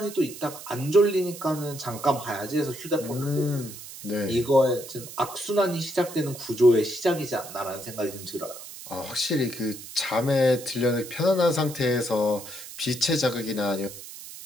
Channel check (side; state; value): right; noise; hiss, 13 dB below the sound